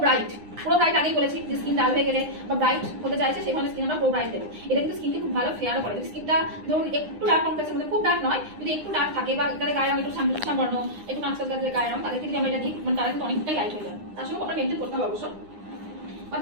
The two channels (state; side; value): late; left; 9.8 ms